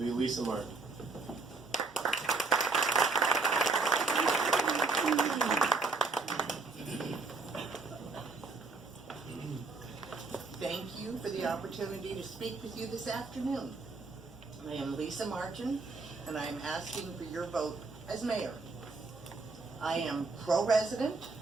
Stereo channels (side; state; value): left; quieter; 4.0 dB